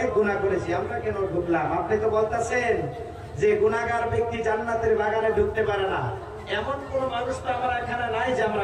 গুনাহ করেছি, আমরা কেন ঢুকলাম? আপনি তো বলতেছেন যে গুনাহগার ব্যক্তি জান্নাতের বাগানে ঢুকতে পারে না। এমন কোন মানুষ তো আমরা এখানে নাই যে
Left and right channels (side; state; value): both; identical; correlation 1.00